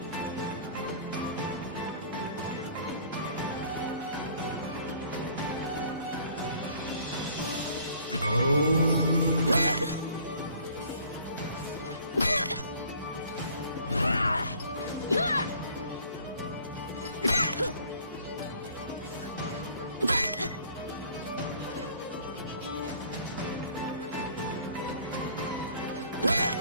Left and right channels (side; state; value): both; inverted; correlation -0.55